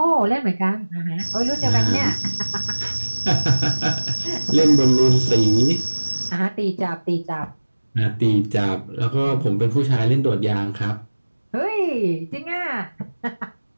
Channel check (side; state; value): both; inverted; correlation -1.00